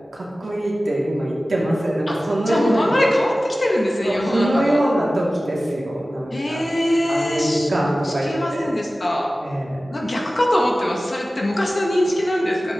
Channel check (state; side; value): normal; both; correlation 0.96